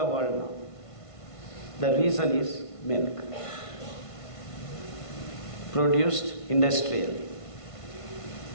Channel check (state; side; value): late; right; 1.5 ms